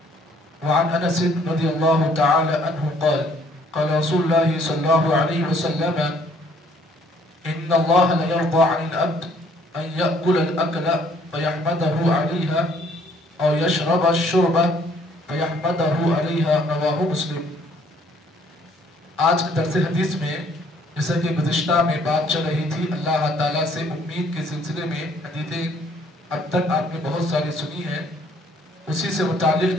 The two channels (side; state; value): both; normal; correlation 0.62